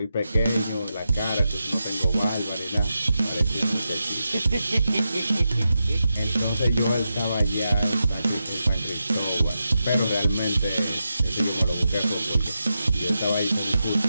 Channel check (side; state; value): both; inverted; correlation -0.88